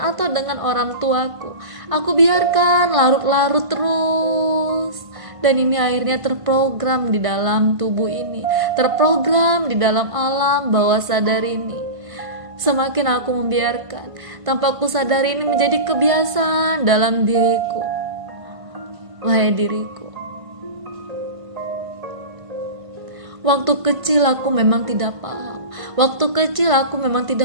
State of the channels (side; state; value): left; late; 1.5 ms